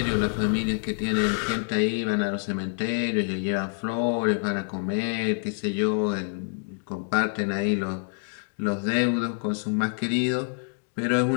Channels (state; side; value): silent; right; 59 dB below the other